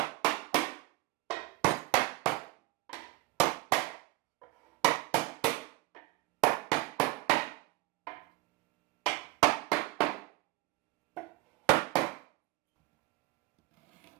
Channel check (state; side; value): quieter; left; 19.6 dB